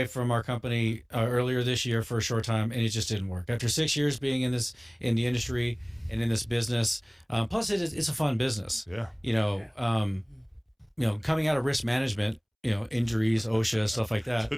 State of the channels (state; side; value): identical; both; correlation 1.00